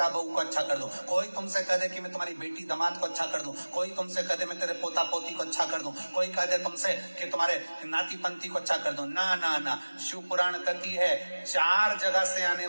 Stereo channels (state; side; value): inverted; both; correlation -1.00